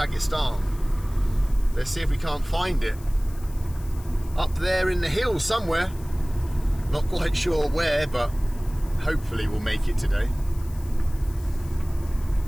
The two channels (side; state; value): left; noise; hiss, 22 dB below the sound